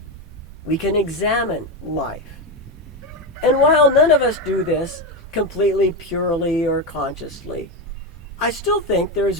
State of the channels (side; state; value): both; normal; correlation 0.12